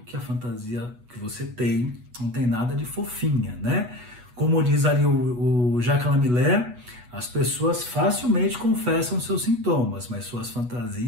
que a fantasia que você tem não tem nada de fofinha, né? Como diz ali o Jacques Lamillé, as pessoas facilmente confessam seus sintomas, mas suas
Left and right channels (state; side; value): late; left; 8.2 ms